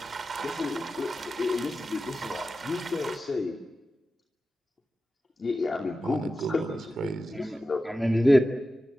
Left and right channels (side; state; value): both; normal; correlation 0.93